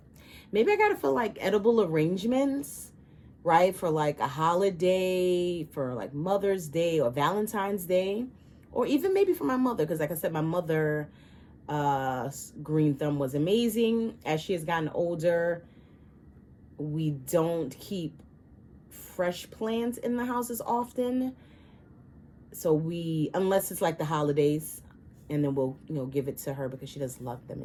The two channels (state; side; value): identical; both; correlation 1.00